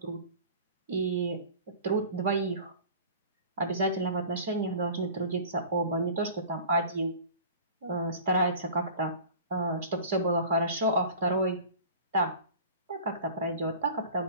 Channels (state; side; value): inverted; both; correlation -0.42